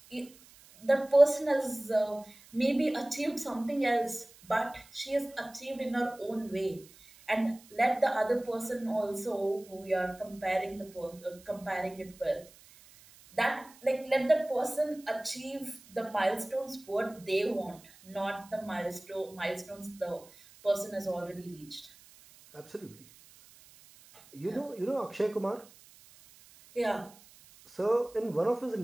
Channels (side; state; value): right; noise; hiss, 24 dB below the sound